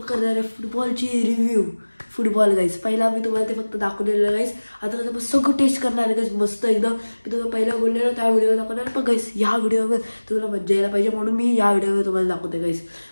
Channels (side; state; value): both; inverted; correlation -1.00